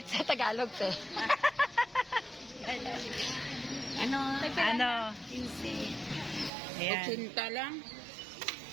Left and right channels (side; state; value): left; drops out; at 6.5 s